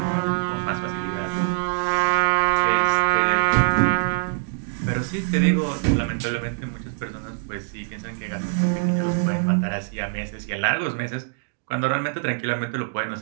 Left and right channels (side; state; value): left; silent; digital silence